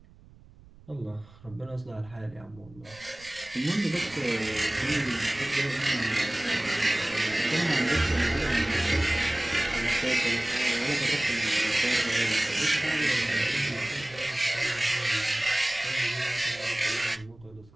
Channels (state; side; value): noise; right; rumble, 23 dB below the sound